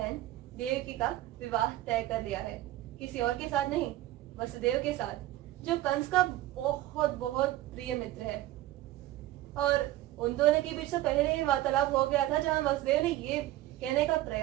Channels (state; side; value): quieter; left; 15.2 dB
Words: देवकी का विवाह तय कर लिया है, किसी और के साथ नहीं, वसुदेव के साथ, जो कंस का बहुत बहुत प्रिय मित्र है। और उन दोनों के बीच तो पहले ही वार्तालाप हो गया था, जहां वसुदेव ने ये कहने का